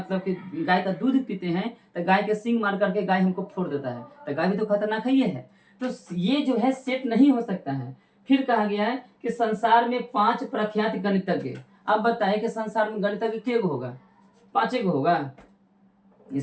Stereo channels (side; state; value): both; identical; correlation 1.00